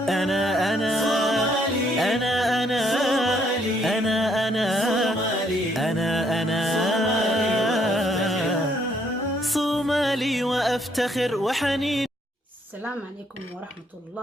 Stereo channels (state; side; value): normal; both; correlation 0.69